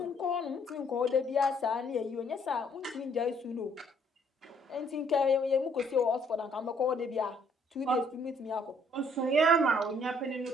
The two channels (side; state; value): both; normal; correlation 0.65